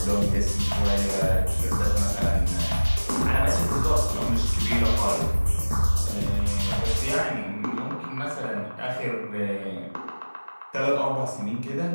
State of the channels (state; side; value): inverted; both; correlation -1.00